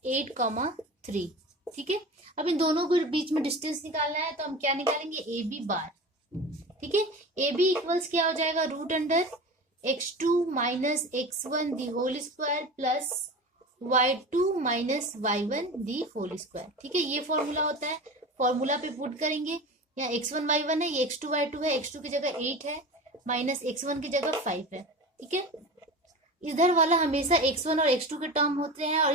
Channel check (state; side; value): normal; both; correlation 0.32